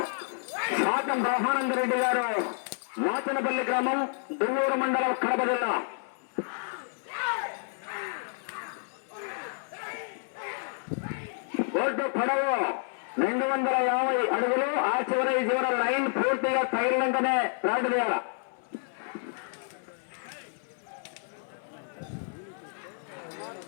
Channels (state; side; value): silent; right; 58 dB below the other